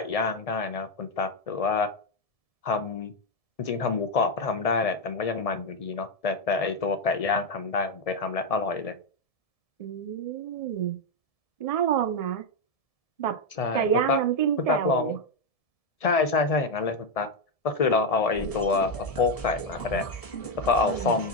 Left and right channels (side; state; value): right; late; 1.7 ms